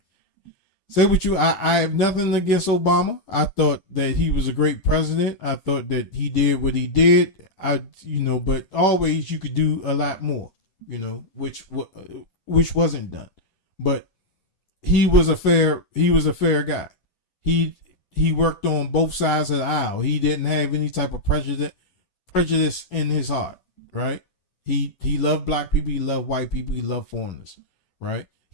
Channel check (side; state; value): right; late; 10 ms